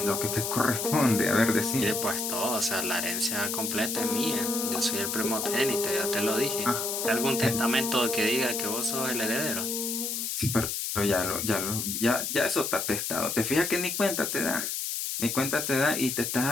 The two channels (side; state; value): left; noise; hiss, 2 dB below the sound